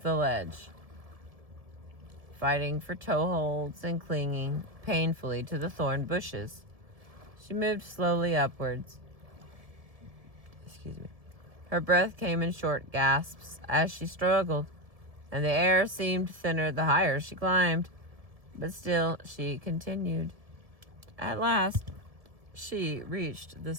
the ledge, fighting for toeholds and clinging painfully to the thorn bushes. She moved slowly upwards. Her breath came in short gasps as she struggled, and the air seemed thinner the higher she climbed. But still, she continued. At last, she reached the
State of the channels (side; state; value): left; late; 1.7 ms